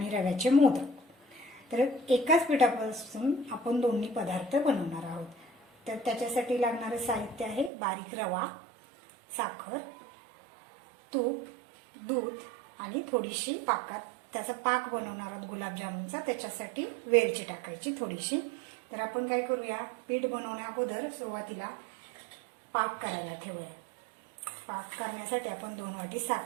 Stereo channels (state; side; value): drops out; left; at 7.7 s